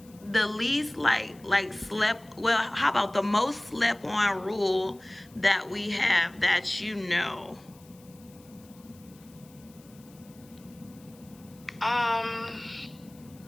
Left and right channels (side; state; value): left; noise; hiss, 26 dB below the sound